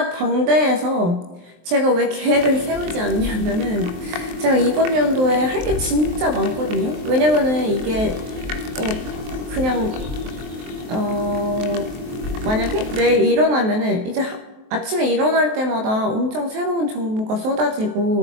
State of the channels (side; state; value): left; late; 23 ms